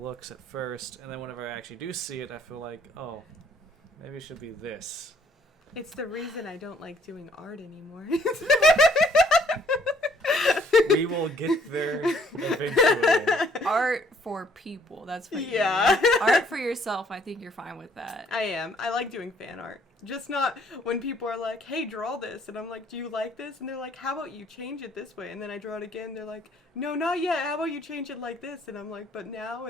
at first, and then whenever I actually do see it, I feel like, oh, maybe it should be this. It's the reason I don't like doing art anymore. We will get there eventually. Art for people. That's what Yeah. you mean. Art for yourself. I think you're fine with that. I am. I like doing fan art. Just not when people are like, hey, draw this. And I'm like, do you like this? And they're like, how about you change it this way? And then I draw it again. They're like, no, not yet. How about you change it like this? And I'm like, but now?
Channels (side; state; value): both; normal; correlation 0.63